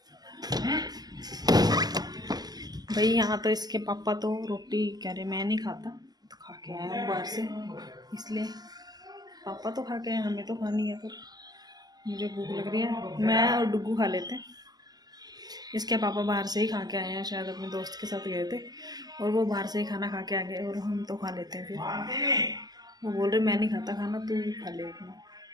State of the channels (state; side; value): late; left; 0.20 ms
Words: भाई यहाँ तो इसके पापा तो रोटी कह रहे मैं नहीं खाता, तो खा के आया हूँ बाहर से, इसलिए पापा तो खा के आए, हमें तो खानी है, पर मुझे भूख लग रही है, मैं और डुगू खा लेते हैं। इसके पापा बाहर से ही खा के आए हैं, शायद अपने दोस्त के साथ गए थे और वो बाहर से ही खाना खा के आ गए, और हम तो खा लेते हैं। फिर वो बोल रहे मैं नहीं खाता खाना, तू खा ले अपना।